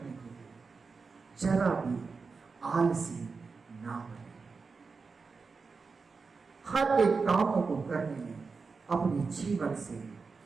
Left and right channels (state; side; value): quieter; left; 4.7 dB